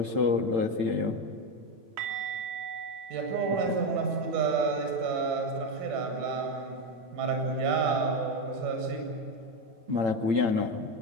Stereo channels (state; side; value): late; left; 8.9 ms